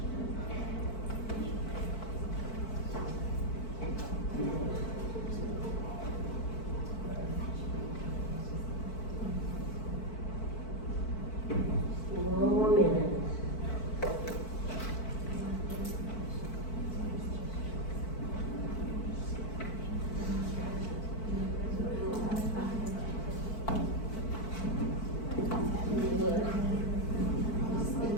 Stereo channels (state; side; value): late; right; 4.5 ms